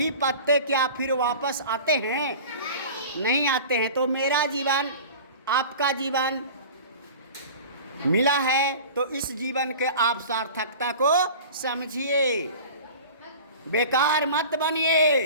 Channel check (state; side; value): inverted; both; correlation -0.38